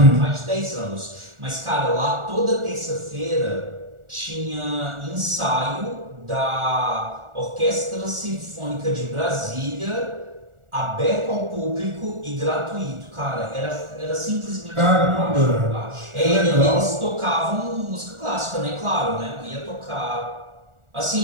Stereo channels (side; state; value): left; late; 1.4 ms